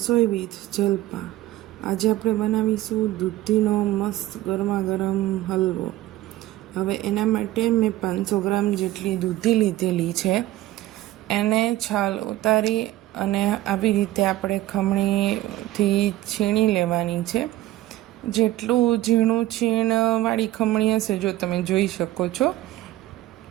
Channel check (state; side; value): quieter; left; 15.5 dB